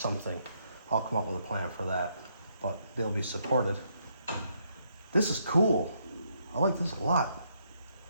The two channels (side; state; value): both; inverted; correlation -0.74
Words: I'll come up with a plan for that, but they'll be supported. This is cool. I like this a lot.